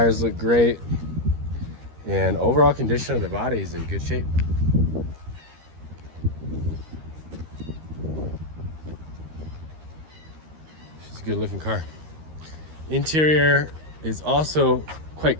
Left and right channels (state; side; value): late; left; 13 ms